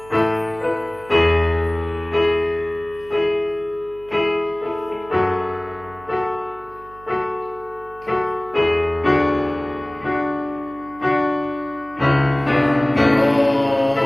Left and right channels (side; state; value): right; noise; hum, 22 dB below the sound